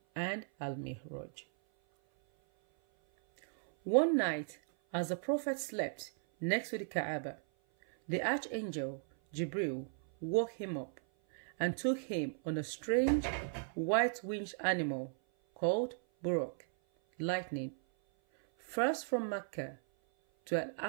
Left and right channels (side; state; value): left; silent; 54 dB below the other